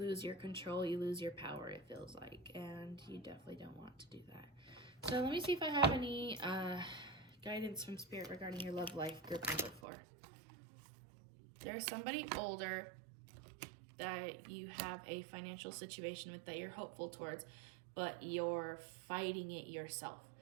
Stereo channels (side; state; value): left; drops out; at 9.8 s